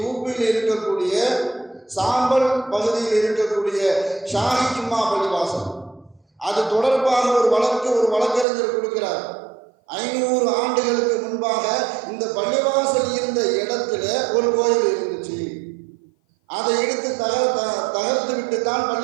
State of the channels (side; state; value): left; drops out; at 8.5 s